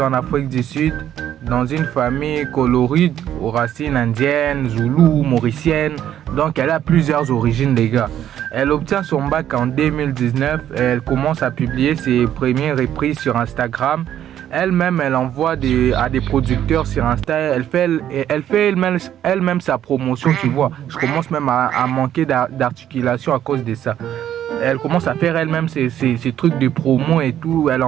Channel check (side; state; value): left; quieter; 10.9 dB